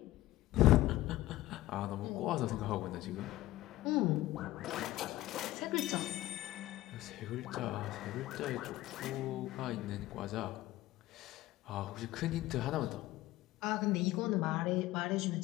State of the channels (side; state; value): right; quieter; 16.3 dB